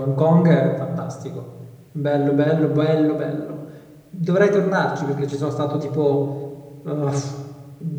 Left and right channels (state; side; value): identical; both; correlation 1.00